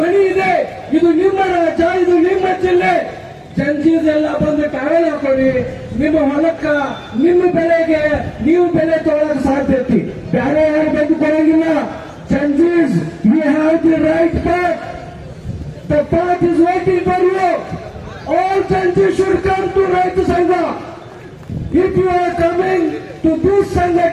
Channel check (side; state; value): both; identical; correlation 1.00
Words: ಮನೆ ಇದೆ, ಇದು ನಿಮ್ಮ ರಾಜ್ಯ, ಇದು ನಿಮ್ಮ ಜಿಲ್ಲೆ. ಜಂಜೀದೆಲ್ಲ ಬಂದು ಟಾವೆಲ್ ಹಾಕೊಳ್ಳಿ. ನಿಮ್ಮ ಹೊಲಕ್ಕ, ನಿಮ್ಮ ಬೆಳೆಗೆ ನೀವು ಬೆಲೆ ತೊಗೊಳಕ್ ಸಾಧ್ಯತೆ. ಬೇರೆ ಯಾರು ಬಂದು ಕೊಡಂಗಿಲ್ಲ. ಜಂಜೀಸ್, you have the right path. The path is waiting for you. All ಜಂಜೀಸ್ ಶುಡ್ ಕಮ್ ಟು ರೈತ ಸಂಘ. If you are coming to this